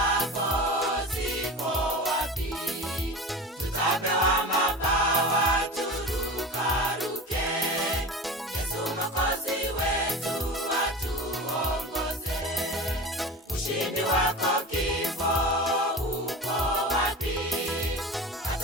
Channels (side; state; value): both; normal; correlation 0.31